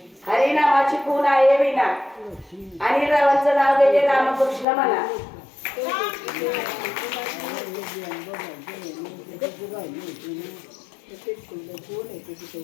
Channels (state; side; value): drops out; right; at 4.7 s